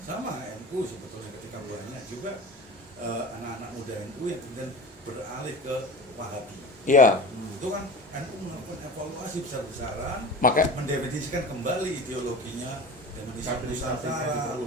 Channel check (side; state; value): both; normal; correlation 0.33